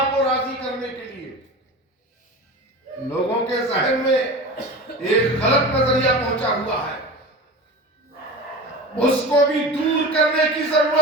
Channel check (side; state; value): both; normal; correlation 0.32